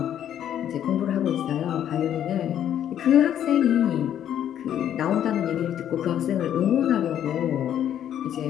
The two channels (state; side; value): quieter; right; 10.3 dB